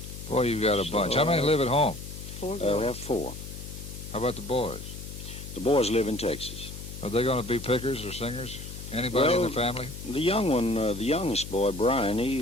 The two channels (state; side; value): noise; left; hum, 11 dB below the sound